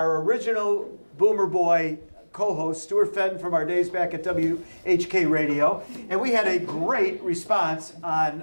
original Boomer Boy co-host, Stuart Fenton, from our days back at WHK Radio, and we had a great response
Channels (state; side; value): inverted; both; correlation -1.00